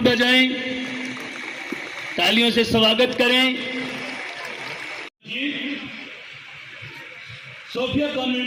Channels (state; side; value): identical; both; correlation 1.00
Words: बजाएं, तालियों से स्वागत करें। सोफिया